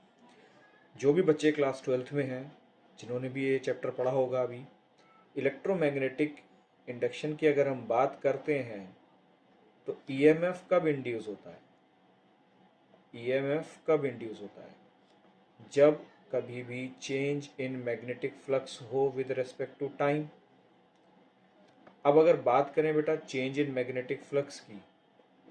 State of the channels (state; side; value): identical; both; correlation 1.00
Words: जो भी बच्चे class 12th में हैं, जिन्होंने भी ये chapter पढ़ा होगा अभी, इलेक्ट्रोमैग्नेटिक इंडक्शन की अगर हम बात करते हैं तो ईएमएफ कब इंड्यूस होता है? ईएमएफ कब इंड्यूस होता है? जब कभी भी चेंज इन मैग्नेटिक फ्लक्स हो विद रिस्पेक्ट टू टाइम। अब अगर बात करें बेटा चेंज इन मैग्नेटिक फ्लक्स की,